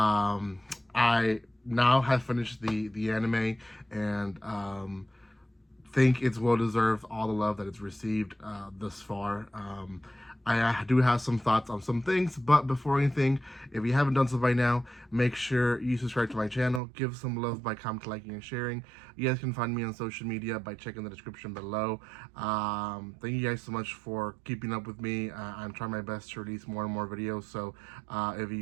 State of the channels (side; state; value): left; drops out; at 16.8 s